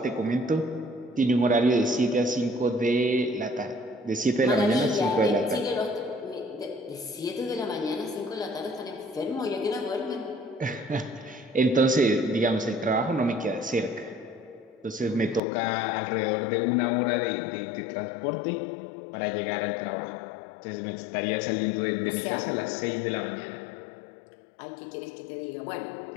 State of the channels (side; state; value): right; drops out; at 15.4 s